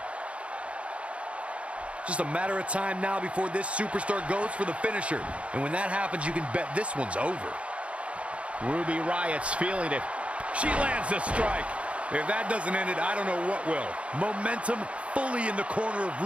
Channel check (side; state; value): left; late; 0.061 ms